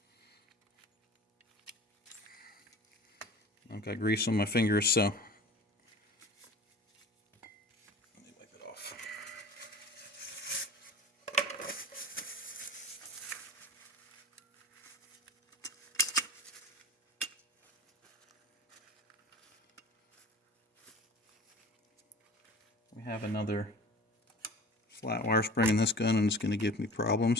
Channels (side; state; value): both; normal; correlation 0.41